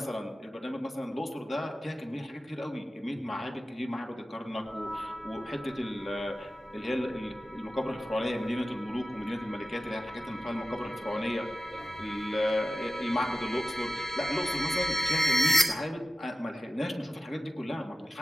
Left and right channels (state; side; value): normal; both; correlation 0.95